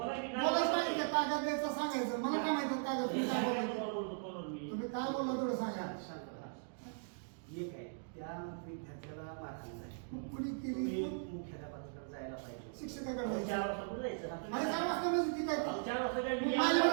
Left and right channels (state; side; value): silent; left; digital silence